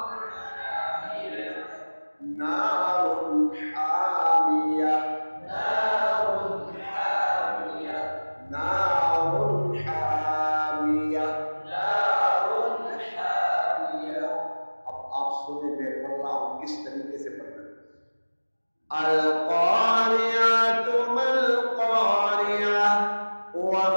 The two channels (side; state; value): both; inverted; correlation -1.00